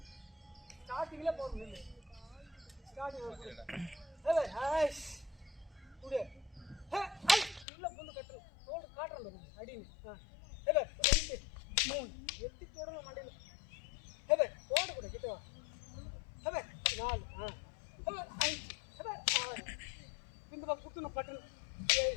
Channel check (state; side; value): drops out; right; at 7.7 s